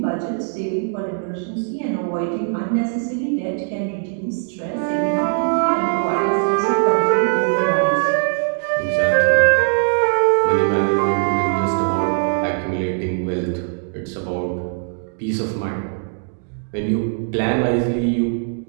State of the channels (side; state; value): left; silent; 65 dB below the other